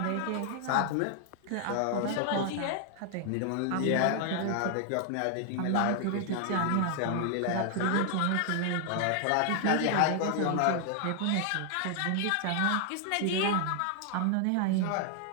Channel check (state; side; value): different; both; correlation 0.00